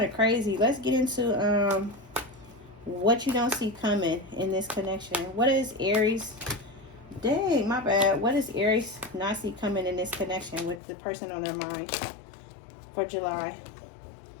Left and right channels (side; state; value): right; drops out; at 10.8 s